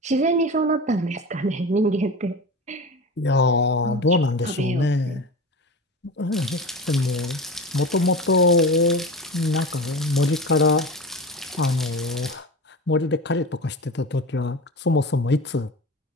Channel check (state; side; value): normal; both; correlation 0.29